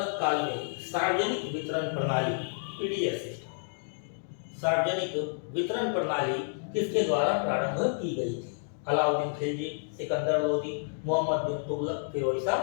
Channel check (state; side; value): silent; right; digital silence